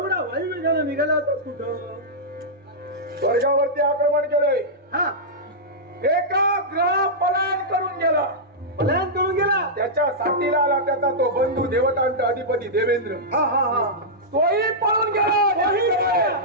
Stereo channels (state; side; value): normal; both; correlation -0.11